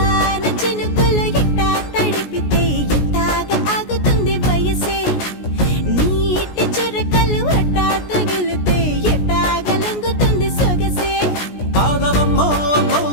చినుకులు ఎట్టా తడిపితే ఎట్టాగా ఆగుతుంది వయసే నీటి చురకలు అట్టా తగిలితే ఎట్టాగా లొంగుతుంది సొగసే ఆగవమ్మో అమ్మో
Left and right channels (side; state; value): right; late; 17 ms